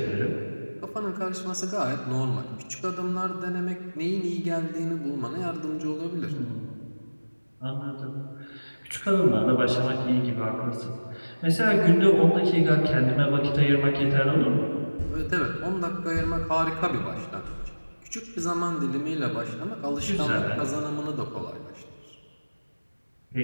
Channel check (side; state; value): both; inverted; correlation -1.00